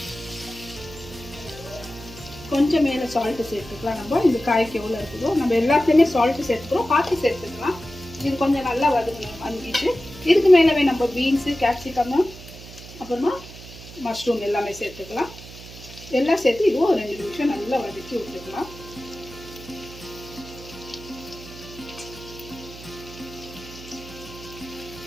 கொஞ்சம் மேலே சால்ட்டு சேர்த்துக்கலாம். நம்ம இந்த காய்க்கு எவ்வளோ இருக்குதோ நம்ம எல்லாத்தையுமே சால்ட்டு சேர்த்துக்கிறோம். பார்த்து சேர்த்துக்கலாம். இது கொஞ்சம் நல்லா வதங்கிட்டு இதுக்கு மேலவே நம்ம பீன்ஸு, கேப்சிகம், அப்புறமா மஷ்ரூம் எல்லாமே சேர்த்துக்கலாம். எல்லாம் சேர்த்து இதுவும் ஒரு 2 நிமிஷம் நல்லா வதக்கி விட்டுக்கலாம்.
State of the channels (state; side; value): noise; right; hum, 15 dB below the sound